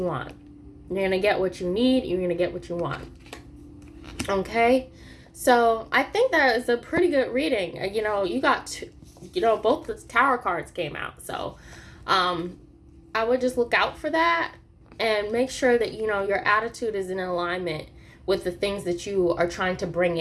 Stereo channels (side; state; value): both; identical; correlation 1.00